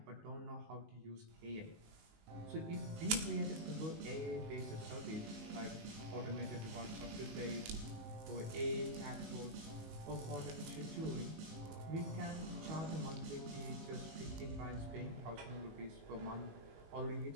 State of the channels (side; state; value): left; late; 19 ms